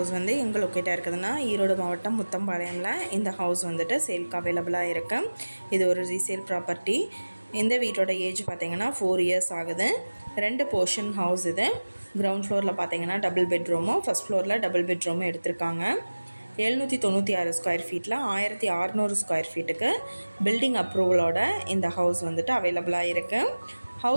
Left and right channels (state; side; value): inverted; both; correlation -1.00